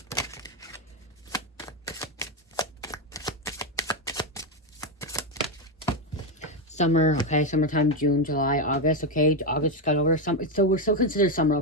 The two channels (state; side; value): normal; both; correlation 0.07